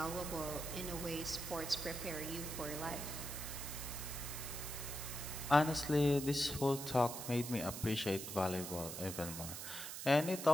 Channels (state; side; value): noise; right; hiss, 7 dB below the sound